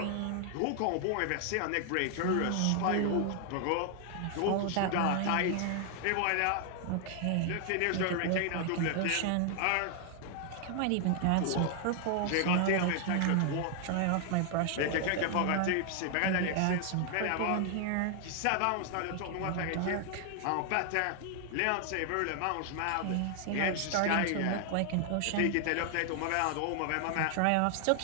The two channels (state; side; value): different; both; correlation 0.00